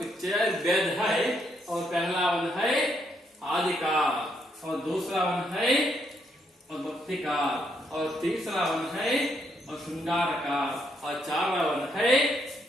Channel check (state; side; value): normal; both; correlation 0.75